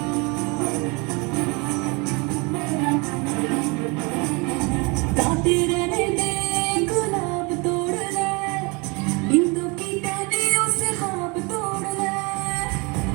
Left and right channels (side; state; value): left; quieter; 28.9 dB